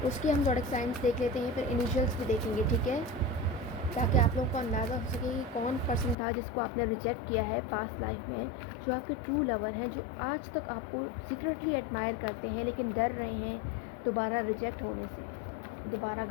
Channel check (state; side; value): drops out; right; at 6.2 s